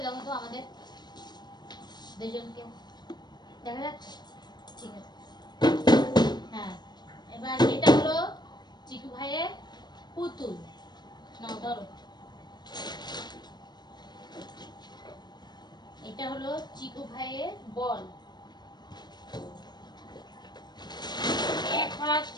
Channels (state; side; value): late; right; 0.21 ms